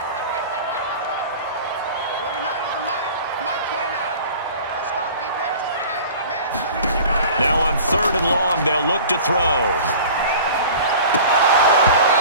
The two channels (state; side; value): inverted; both; correlation -0.42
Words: 29 is a Mike. Mike 29. Let's go, defense. Now on 3rd and long, they'll look to throw.